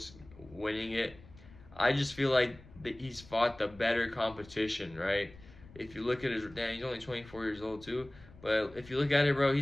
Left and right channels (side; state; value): left; noise; rumble, 21 dB below the sound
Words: winning it. I just feel like he's fought the better competition, right? If you look at he's only 24 years old too, but if you look at it, bro,